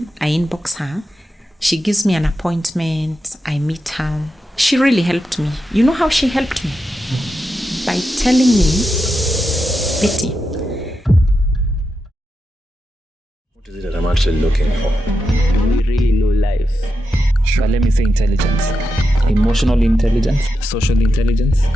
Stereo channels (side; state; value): both; normal; correlation 0.88